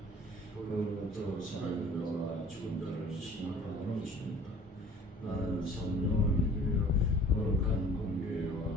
그로부터 살아있는 죽은 자를 심판하러 오십니다. 나는 성령을 믿으며 거룩한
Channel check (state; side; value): normal; both; correlation 0.49